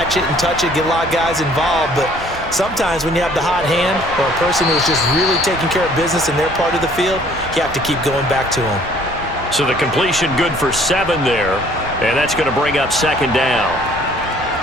it and touch it, get a lot of guys involved. But sometimes when you have the hot hand or a person who's just really taking care of business in their part of the field, you have to keep going back to them. So the completion good for 7 there. And that's going to bring up 2nd down.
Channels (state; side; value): normal; both; correlation 0.58